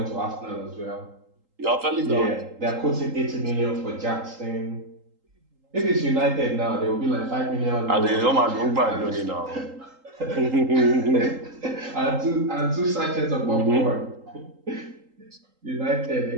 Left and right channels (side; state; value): left; late; 3.8 ms